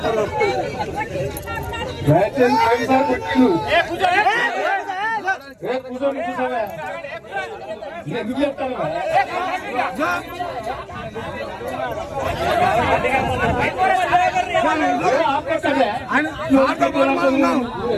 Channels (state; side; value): identical; both; correlation 1.00